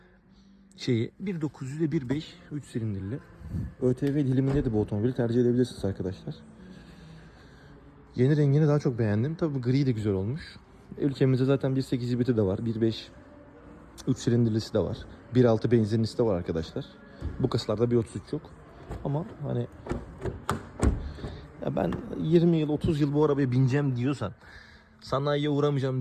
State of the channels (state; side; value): identical; both; correlation 1.00